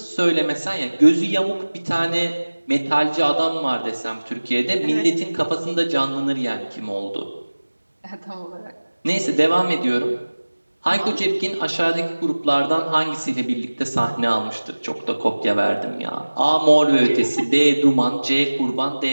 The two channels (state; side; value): inverted; both; correlation -1.00